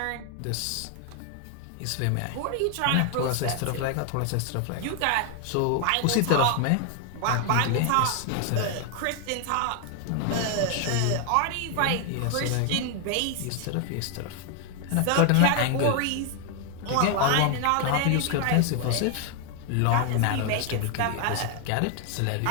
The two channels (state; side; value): different; both; correlation 0.00